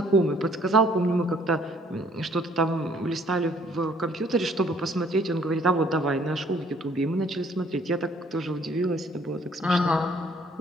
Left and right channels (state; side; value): normal; both; correlation 0.61